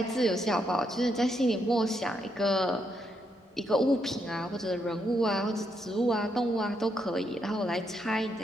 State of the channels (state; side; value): normal; both; correlation 0.78